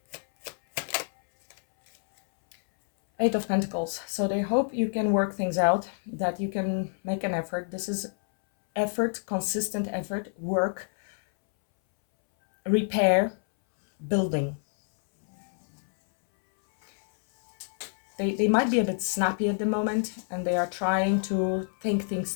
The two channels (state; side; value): silent; right; 60 dB below the other